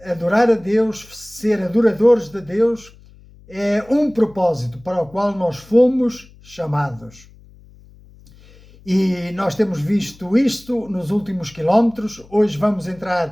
adorar a Deus, ser adoradores de Deus, é um propósito para o qual nós fomos chamados. E nós temos visto isto nos últimos quilómetros. Hoje vamos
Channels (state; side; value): noise; left; hum, 24 dB below the sound